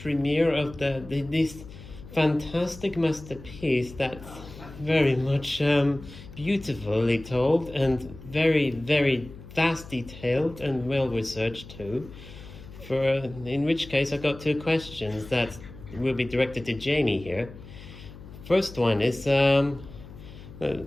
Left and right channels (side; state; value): left; noise; hum, 16 dB below the sound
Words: of this fantastic masterpiece that's very much beautifully told and very, very vast detailed and well researched too. In which case I got two questions that will be directed to Jamie here. First one is